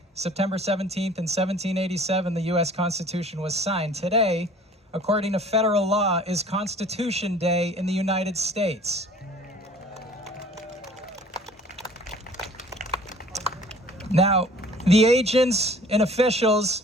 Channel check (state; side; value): normal; both; correlation 0.50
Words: September 17th in 1787, the U.S. Constitution was signed. Today, according to federal law, is Constitution Day in the United States. Now, the agents and